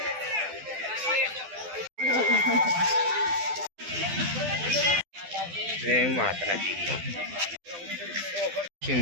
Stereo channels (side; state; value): left; late; 12 ms